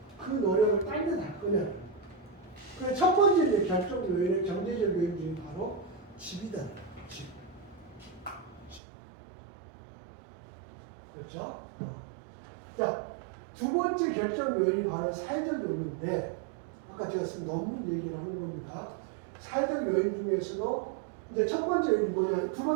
그 노력을 딴 데 할 거냐. 그래서 첫 번째 이제 결정 요인의 경제적 요인 중에 바로 집이다. 집. 그렇죠? 자, 두 번째 결정 요인이 바로 사회적 요인인데, 아까 제가 쓴 논문 얘기를 하는 겁니다. 사회적 요인 중에서도 이제 첫 번째 요인이 뭐냐, 두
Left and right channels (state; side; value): drops out; left; at 8.8 s